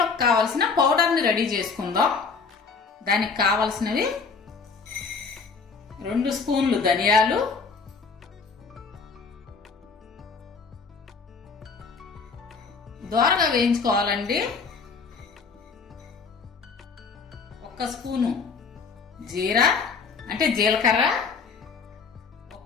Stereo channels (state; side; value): quieter; right; 5.0 dB